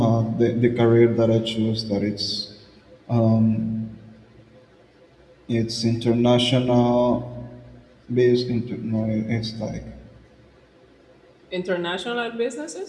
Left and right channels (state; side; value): identical; both; correlation 1.00